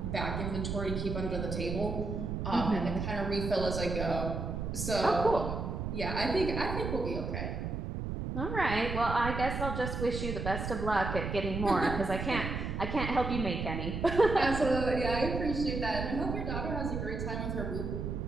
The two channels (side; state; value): right; noise; rumble, 3 dB below the sound